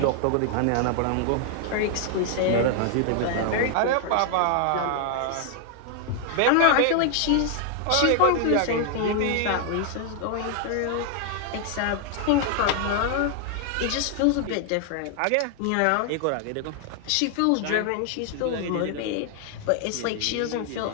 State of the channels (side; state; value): both; different; correlation 0.00